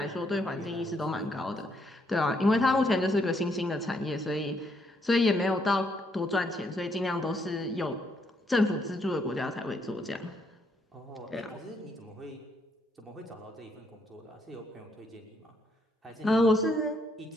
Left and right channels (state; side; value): normal; both; correlation 0.73